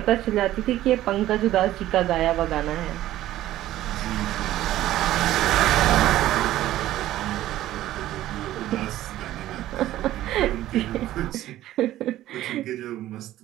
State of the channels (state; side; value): quieter; left; 14.2 dB